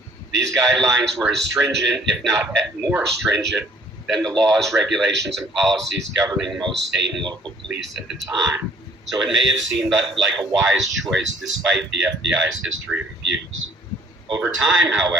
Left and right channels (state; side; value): normal; both; correlation 0.58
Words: These guidelines were as stringent, if not more stringent, than the laws, regulations, and policies governing most state and local police at the time. So it may have seemed like a wise choice despite the FBI's history of abuse. Over time,